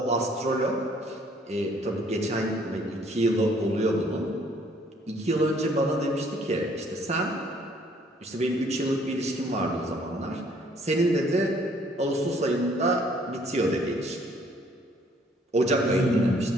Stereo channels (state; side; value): normal; both; correlation 0.62